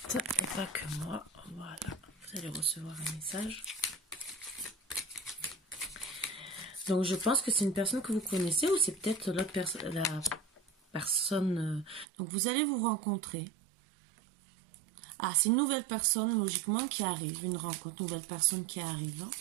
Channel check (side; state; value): left; drops out; at 12.1 s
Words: et pas que moi. Voilà, vous allez recevoir un message. Donc je pense que c'est une personne que vous connaissez ou c'est peut-être la personne. Donc vous allez vous rencontrer. Ah, c'est une nouvelle personne logiquement qui arrive, une rencontre, nouvelle personne qui arrive.